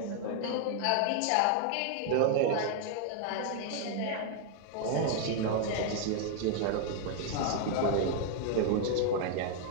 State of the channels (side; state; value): both; different; correlation 0.00